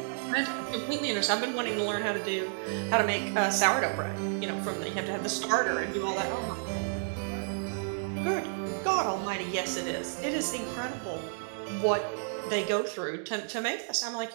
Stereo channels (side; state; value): left; silent; digital silence